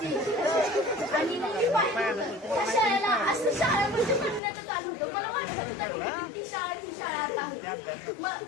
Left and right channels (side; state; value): right; drops out; at 4.4 s